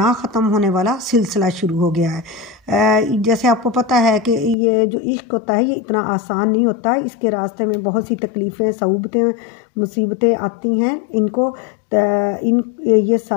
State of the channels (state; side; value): drops out; right; at 4.5 s